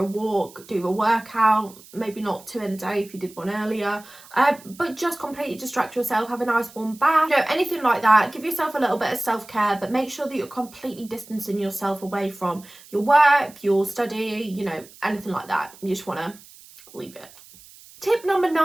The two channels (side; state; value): right; noise; hiss, 22 dB below the sound